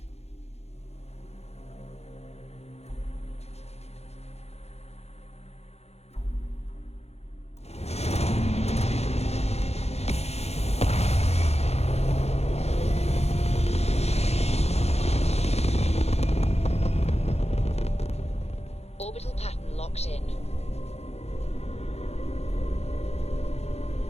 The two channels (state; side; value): late; right; 0.31 ms